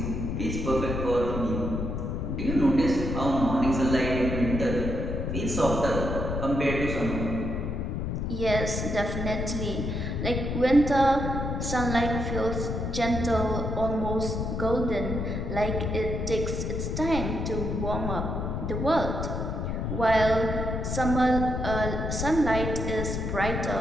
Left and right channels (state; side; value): noise; left; rumble, 2 dB below the sound